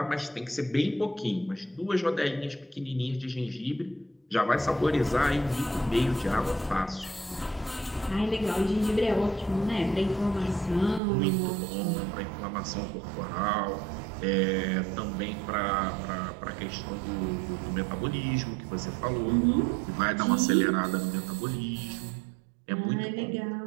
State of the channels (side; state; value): left; drops out; at 11.0 s